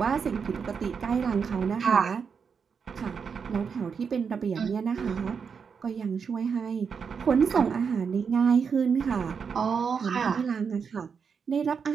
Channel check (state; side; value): quieter; left; 6.2 dB